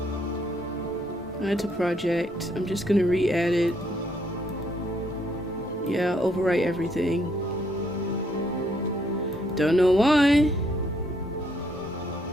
Add to project. I'm just gonna re-add it. Yeah, overwrite everything. Don't know why.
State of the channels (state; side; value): normal; both; correlation 0.71